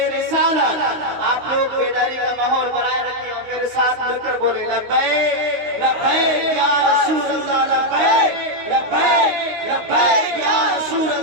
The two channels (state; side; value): late; left; 16 ms